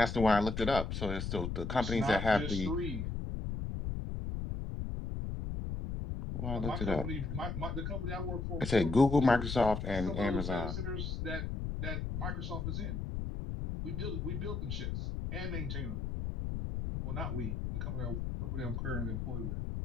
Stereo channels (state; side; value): noise; left; rumble, 3 dB below the sound